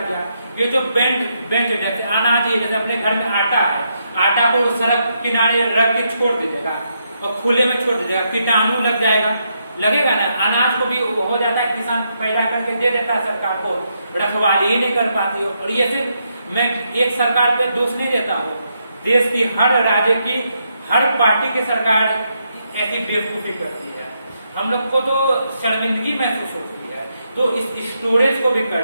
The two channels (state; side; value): inverted; both; correlation -0.79